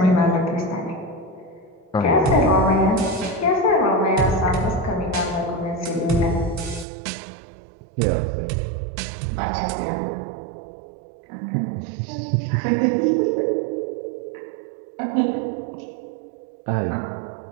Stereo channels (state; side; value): drops out; left; at 6.9 s